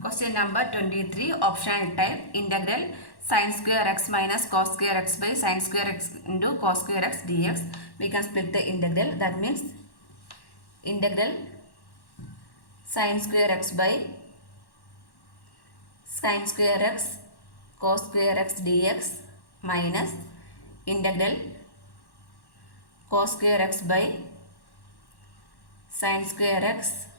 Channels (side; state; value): right; late; 1.1 ms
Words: Question number 23, optional type, integral sin square x minus cos square x by sin square x into cos square x dx. We can split the integral. That means integral sin square x by sin square x cos square x dx minus integral cos square x by sin square x